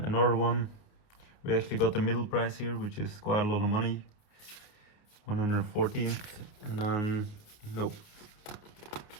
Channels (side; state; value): right; late; 29 ms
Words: another one, we actually got the middle prize here, which is quite a lot of money, 114th. And then nope,